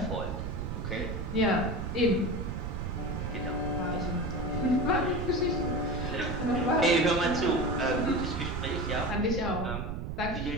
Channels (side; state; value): right; noise; rumble, 4 dB below the sound